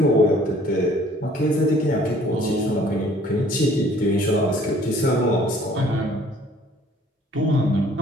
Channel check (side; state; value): both; normal; correlation 0.56